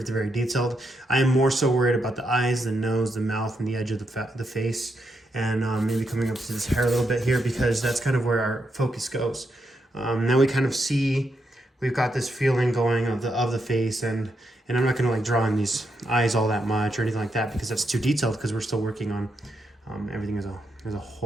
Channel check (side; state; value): both; normal; correlation 0.82